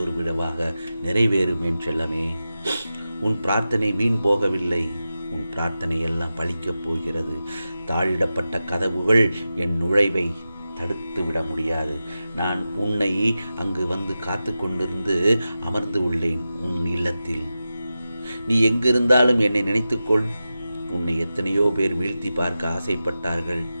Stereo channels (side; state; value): both; inverted; correlation -0.93